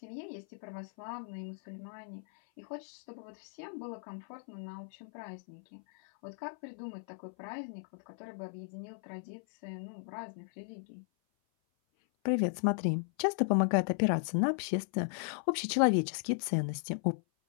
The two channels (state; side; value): silent; right; 54 dB below the other